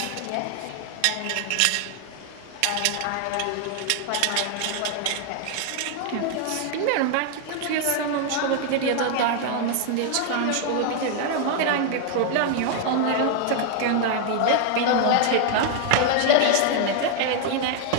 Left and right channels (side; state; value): both; different; correlation 0.00